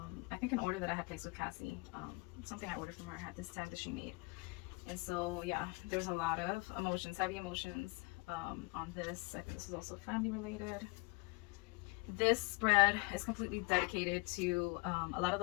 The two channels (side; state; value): right; quieter; 27.0 dB